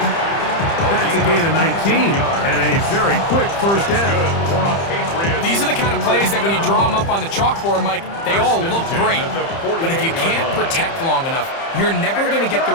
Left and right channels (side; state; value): right; late; 30 ms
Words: That's a gain of 19 and a very quick first down. These are the kind of plays that when you draw them up on the chalkboard, Mike, they all look great. But if you can't protect long enough, you're never going to get the